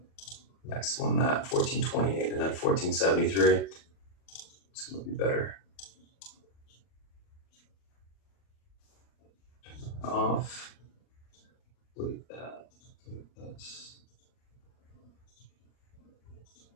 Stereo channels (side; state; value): right; late; 40 ms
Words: next one that 1428 and then 1473. It's gonna be better. Off. Look at that. Look at this.